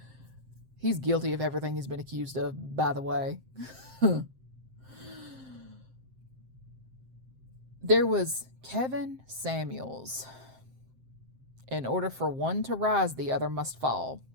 he's guilty of everything he's been accused of, by the way. There was Kevin Samuels. In order for one to rise, the other must fall.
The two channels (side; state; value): left; late; 7.7 ms